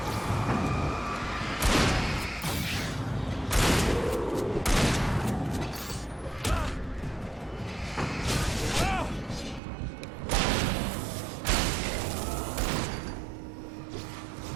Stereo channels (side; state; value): left; drops out; at 9.6 s